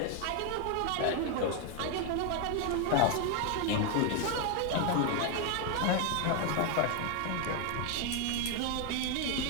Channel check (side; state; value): both; different; correlation 0.01